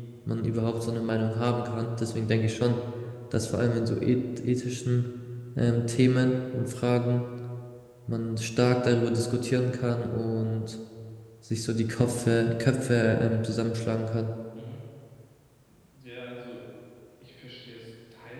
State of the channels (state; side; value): identical; both; correlation 1.00